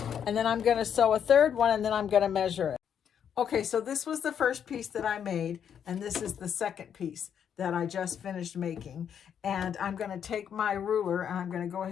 And then I'm going to sew a third one, and then I'm going to measure it. Okay, so this was the first piece that I made, and this is the second piece that I just finished making. And I'm going to take my ruler, and I'm going to go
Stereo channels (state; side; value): quieter; right; 8.4 dB